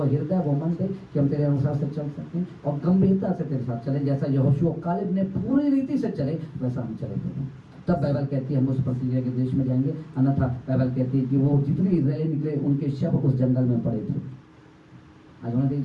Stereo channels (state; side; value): identical; both; correlation 1.00